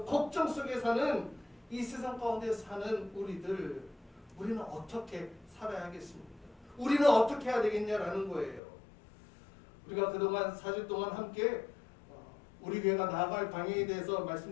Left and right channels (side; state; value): right; drops out; at 8.6 s